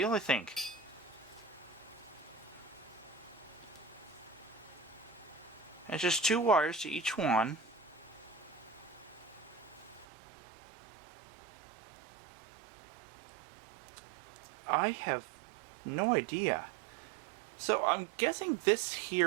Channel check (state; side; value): drops out; left; at 10.1 s